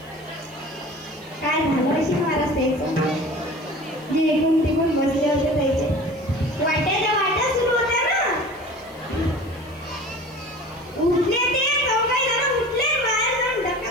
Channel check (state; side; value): noise; left; hiss, 28 dB below the sound